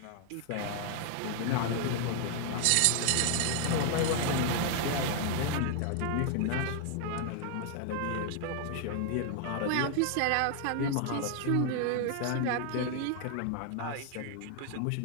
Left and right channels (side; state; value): both; different; correlation 0.00